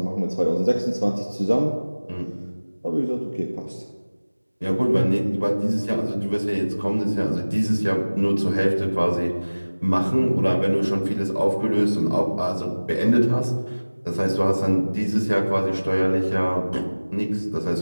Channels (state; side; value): inverted; both; correlation -1.00